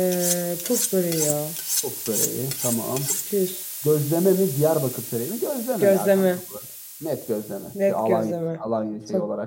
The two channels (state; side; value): identical; both; correlation 1.00